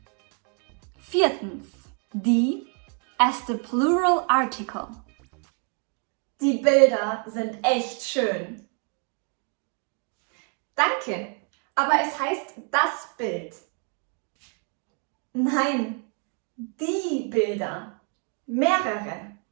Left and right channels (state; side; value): quieter; left; 39.0 dB